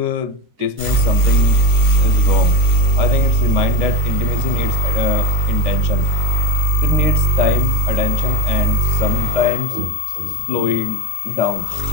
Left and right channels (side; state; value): left; late; 13 ms